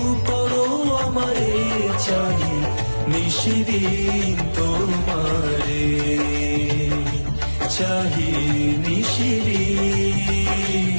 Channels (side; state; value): both; inverted; correlation -1.00